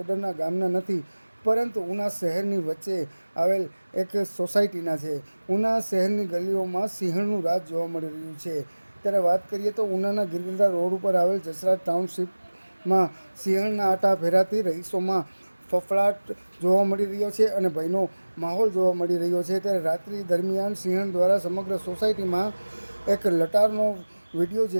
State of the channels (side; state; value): both; inverted; correlation -1.00